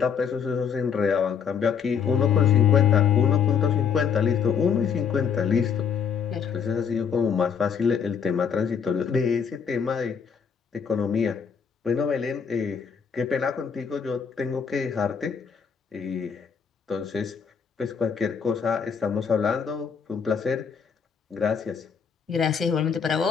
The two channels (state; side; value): quieter; right; 6.7 dB